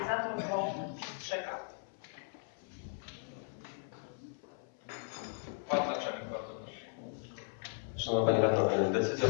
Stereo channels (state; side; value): silent; right; 53 dB below the other